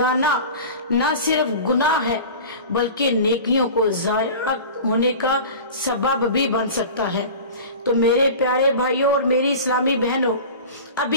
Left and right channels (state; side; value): inverted; both; correlation -0.36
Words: न सिर्फ गुनाह है बल्कि नेकियों को ज़ाया होने का सबब भी बन सकता है। तो मेरे प्यारे भाइयों और मेरी इस्लामी बहनों,